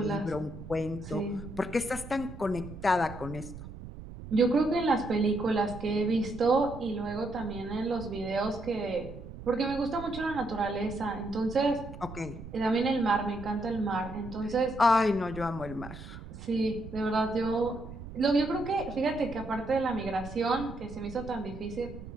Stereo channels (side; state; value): right; noise; rumble, 13 dB below the sound